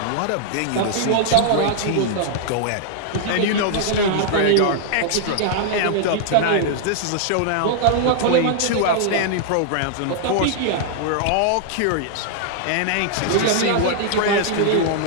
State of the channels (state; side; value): different; both; correlation -0.01